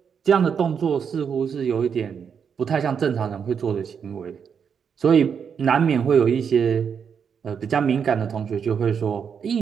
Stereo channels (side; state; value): left; quieter; 7.0 dB